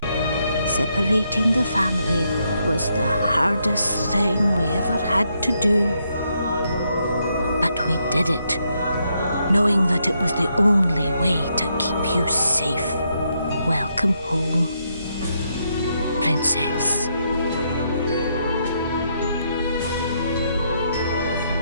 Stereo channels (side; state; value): both; inverted; correlation -0.78